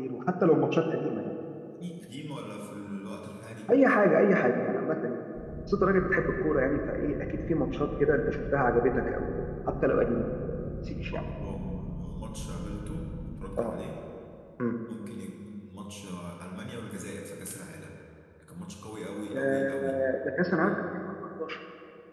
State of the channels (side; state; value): both; identical; correlation 1.00